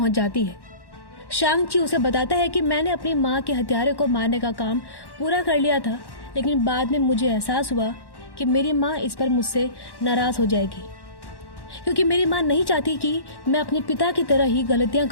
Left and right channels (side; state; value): right; late; 1.1 ms